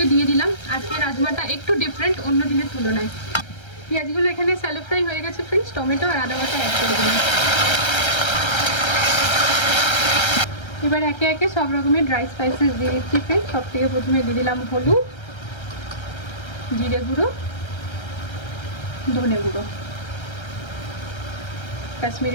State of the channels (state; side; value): late; right; 1.3 ms